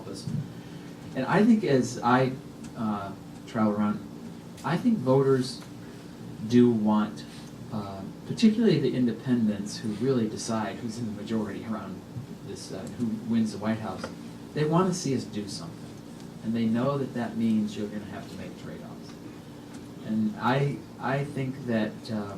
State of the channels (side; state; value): both; identical; correlation 1.00